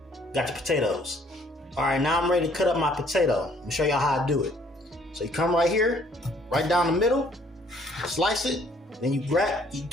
got the potatoes. All right, now I'm ready to cut up my potato. Let me show y'all how I do it. So you come right here, right down the middle, slice it, then you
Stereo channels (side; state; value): both; normal; correlation 0.62